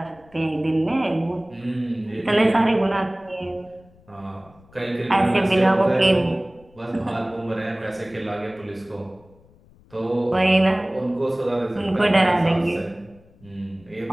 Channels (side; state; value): left; noise; rumble, 28 dB below the sound